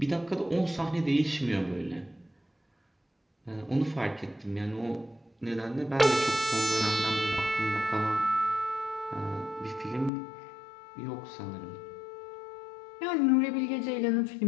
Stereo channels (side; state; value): right; drops out; at 10.1 s